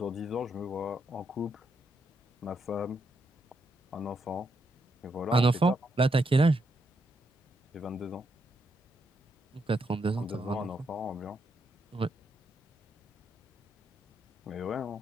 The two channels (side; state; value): both; normal; correlation 0.79